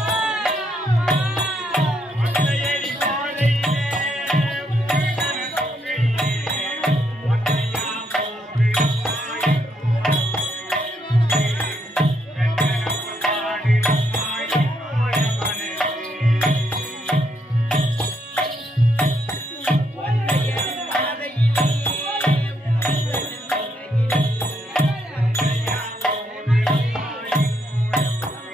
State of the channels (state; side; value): normal; both; correlation 0.75